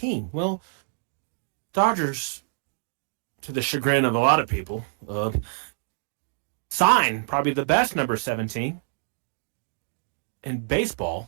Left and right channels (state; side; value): silent; left; digital silence